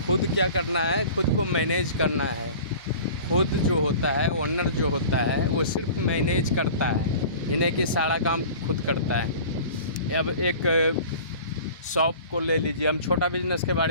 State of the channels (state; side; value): inverted; both; correlation -0.41